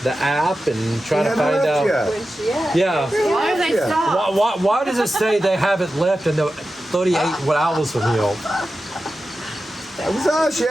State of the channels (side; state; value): both; normal; correlation 0.93